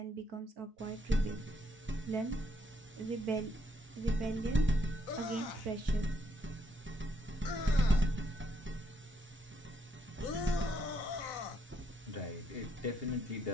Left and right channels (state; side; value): normal; both; correlation 0.73